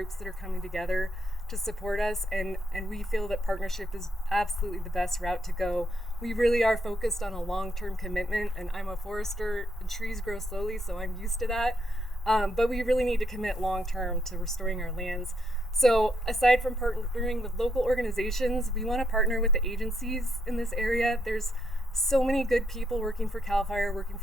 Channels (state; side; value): normal; both; correlation 0.77